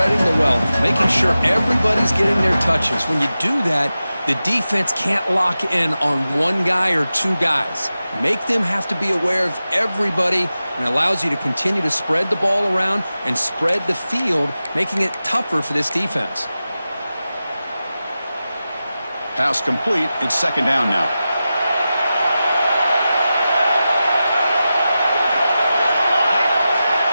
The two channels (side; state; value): both; inverted; correlation -0.93